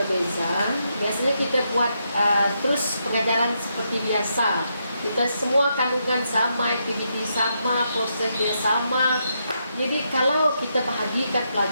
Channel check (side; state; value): both; inverted; correlation -0.80